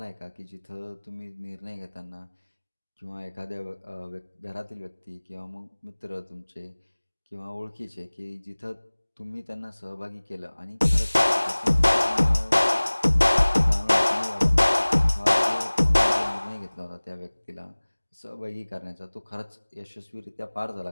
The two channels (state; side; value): inverted; both; correlation -1.00